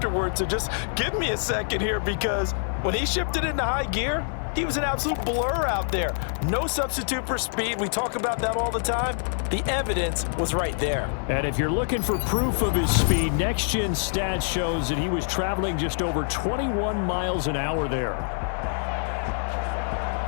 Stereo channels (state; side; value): silent; right; digital silence